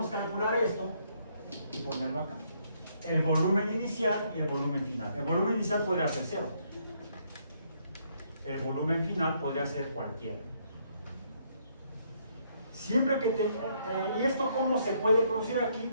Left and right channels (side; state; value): both; inverted; correlation -0.71